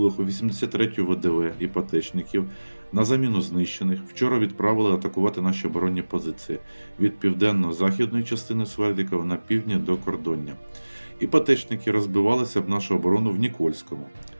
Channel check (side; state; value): both; inverted; correlation -1.00